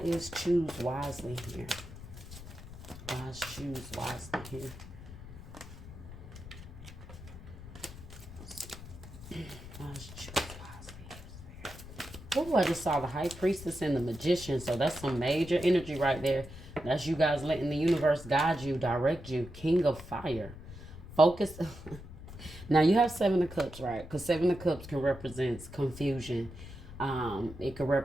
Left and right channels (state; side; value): noise; left; rumble, 14 dB below the sound